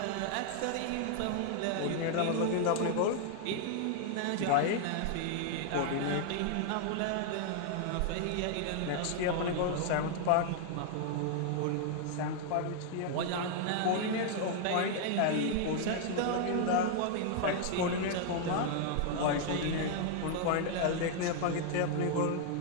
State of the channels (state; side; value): different; both; correlation 0.00